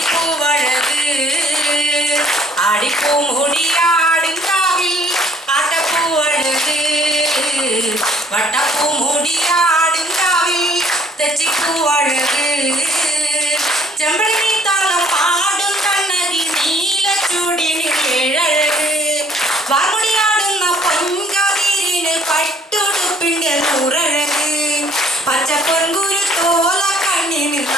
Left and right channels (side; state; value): both; normal; correlation 0.61